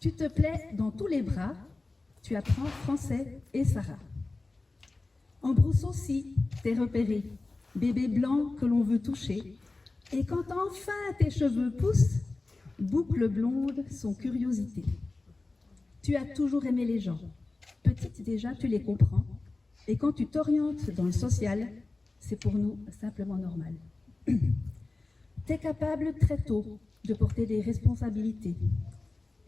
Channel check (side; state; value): right; quieter; 3.3 dB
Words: te plais dans tous les bras, tu apprends français et Sarah. En brousse aussi, t'es repéré, bébé blanc que l'on veut toucher, et quand enfin tes cheveux poussent, boucle blonde son curiosité. Tu as toujours aimé les gens, petite déjà tu les comprends, et quand tu t'orientes dans le social, c'est pour nous simplement normal. T'es capable très tôt de porter des responsabilités,